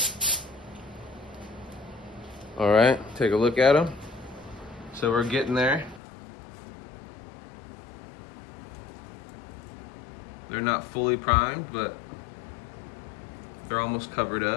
All right, take a look at them. So we're getting there. They're not fully primed, but they're almost covered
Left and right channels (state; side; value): drops out; right; at 6.0 s